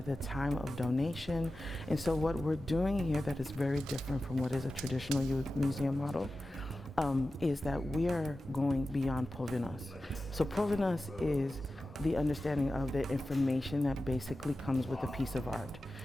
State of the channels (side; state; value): both; normal; correlation 0.94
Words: time of donation. And so what we're doing here that is very different from what is a traditional museum model is that we are going beyond provenance. So provenance is the understanding of the information that basically comes with a piece of art.